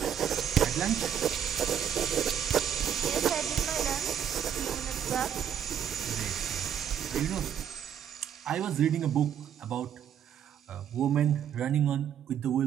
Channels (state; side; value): quieter; left; 9.1 dB